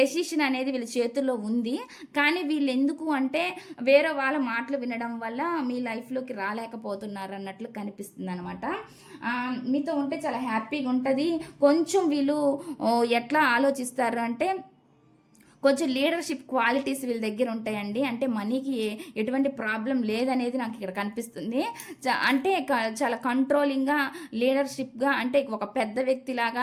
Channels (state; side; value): identical; both; correlation 1.00